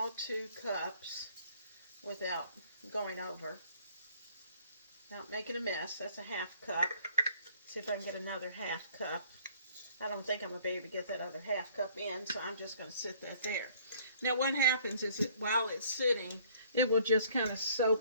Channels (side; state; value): both; inverted; correlation -0.58